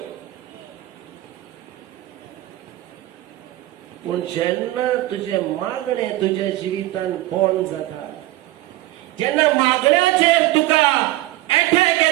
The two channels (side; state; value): left; quieter; 17.2 dB